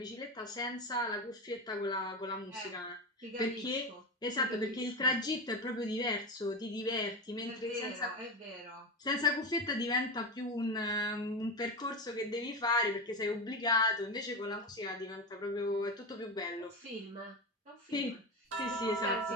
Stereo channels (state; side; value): normal; both; correlation 0.19